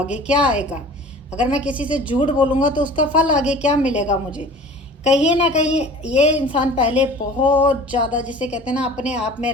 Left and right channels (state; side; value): normal; both; correlation 0.43